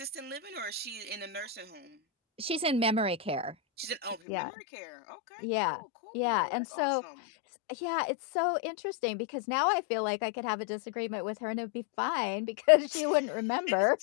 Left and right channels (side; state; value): right; drops out; at 4.2 s